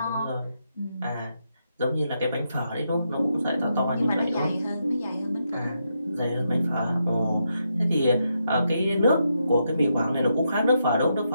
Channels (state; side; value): inverted; both; correlation -0.82